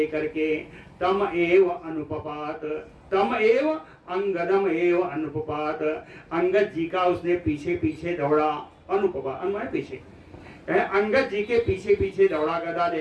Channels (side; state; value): both; identical; correlation 1.00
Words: के तम एव अनुपपात, तम एव अंगदम एव अनुपपात, अंगद जी का उसने पीछे पीछे दौड़ा। अनुपपा अनुमान पीछे, अंगद जी के पीछे पीछे दौड़ा गदा